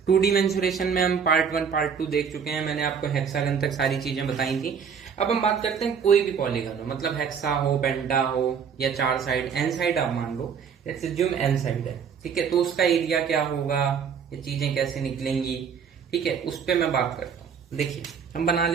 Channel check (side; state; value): left; quieter; 6.8 dB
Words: 2D मेंसुरेशन में हम पार्ट 1 पार्ट 2 देख चुके हैं। मैंने आपको हेक्सागन तक सारी चीजें बताई थी। अब हम बात करते हैं कोई भी पॉलीगन हो, मतलब हेक्सा हो, पेंटा हो या चार साइड, एन साइड आप मान लो। लेट्स अज्यूम एन साइड है, ठीक है। तो उसका एरिया क्या होगा, ये चीजें कैसे निकलेंगी, ठीक है, उस पर मैं बात करता हूँ। देखिए हम बना